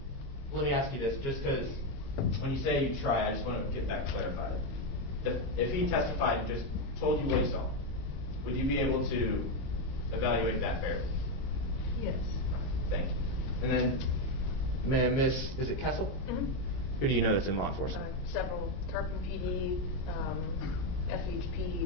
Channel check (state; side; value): late; right; 22 ms